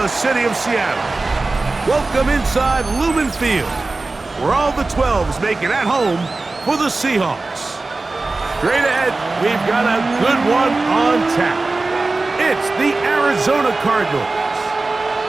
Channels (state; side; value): quieter; left; 3.4 dB